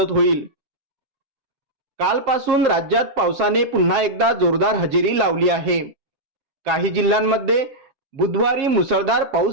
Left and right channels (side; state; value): left; late; 7.4 ms